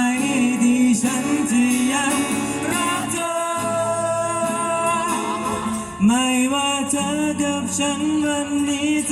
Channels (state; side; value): identical; both; correlation 1.00